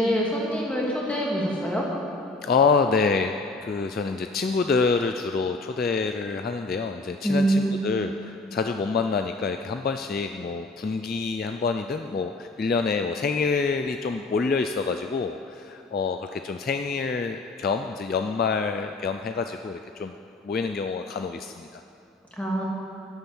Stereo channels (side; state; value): right; quieter; 3.2 dB